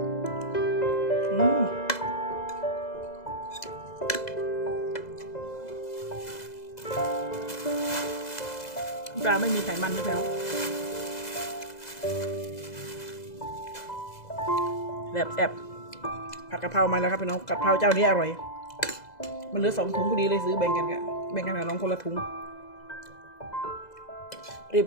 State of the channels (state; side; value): late; right; 2.0 ms